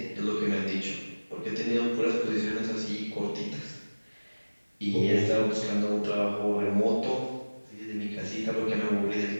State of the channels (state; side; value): inverted; both; correlation -1.00